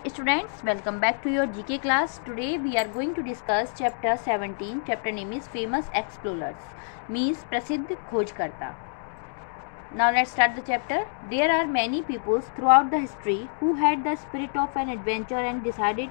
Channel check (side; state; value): right; silent; digital silence